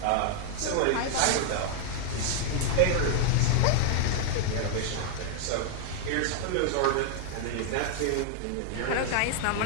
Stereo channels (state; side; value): different; both; correlation 0.00